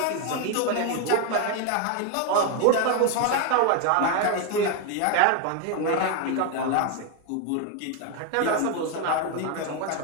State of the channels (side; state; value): both; different; correlation 0.01